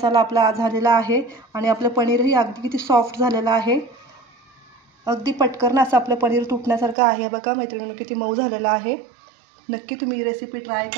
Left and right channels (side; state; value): left; drops out; at 7.0 s